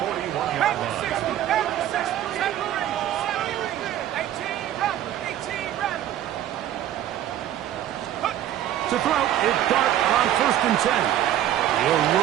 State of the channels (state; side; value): quieter; left; 11.9 dB